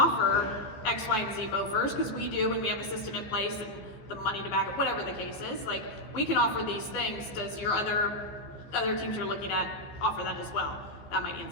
X, Y, and Z mofers? Because we do, and we have a system in place and the money to back it, whatever the case is. Like, we can offer these things. Does your other teams you're looking at offer that as well? That might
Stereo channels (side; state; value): right; late; 15 ms